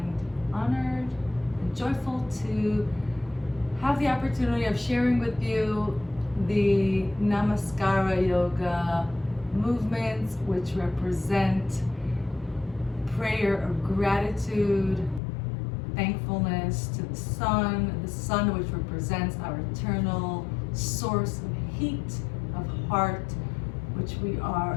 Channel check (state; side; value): drops out; right; at 15.2 s